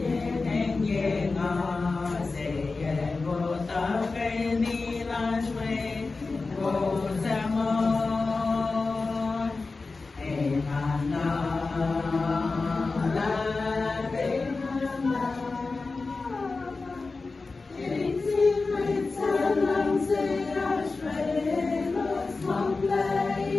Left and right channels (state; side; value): quieter; right; 3.9 dB